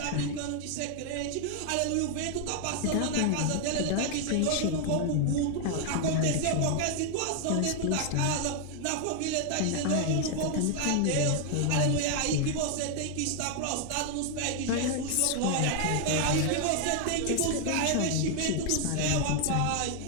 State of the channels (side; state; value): both; different; correlation 0.00